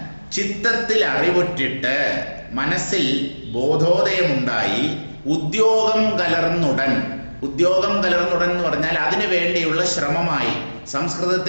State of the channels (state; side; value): inverted; both; correlation -1.00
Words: ചിത്തത്തിൽ അറിവുറ്റിട്ട് മനസ്സിൽ ബോധോദയമുണ്ടായി ഉദ്യോഗം കലർന്നുടൻ എന്ന് പറഞ്ഞാൽ അതിനു വേണ്ടിയുള്ള ശ്രമമായി.